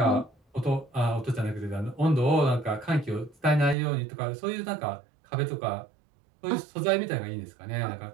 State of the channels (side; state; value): left; drops out; at 3.8 s